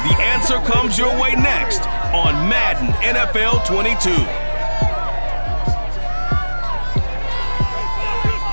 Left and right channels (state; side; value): inverted; both; correlation -1.00